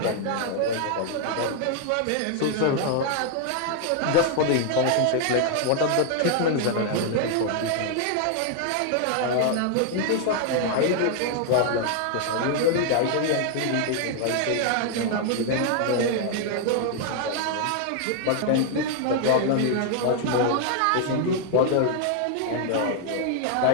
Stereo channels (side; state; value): both; different; correlation 0.00